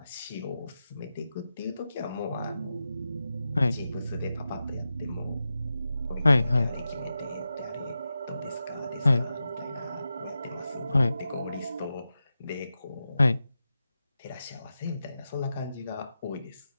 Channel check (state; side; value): inverted; both; correlation -0.90